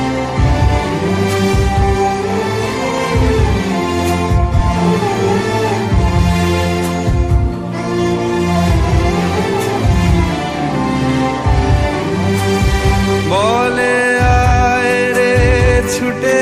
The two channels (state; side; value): identical; both; correlation 1.00